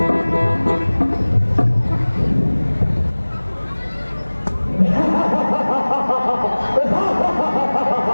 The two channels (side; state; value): both; inverted; correlation -1.00